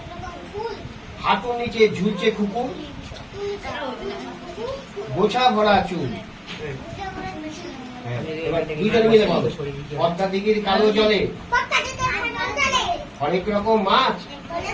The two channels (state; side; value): identical; both; correlation 1.00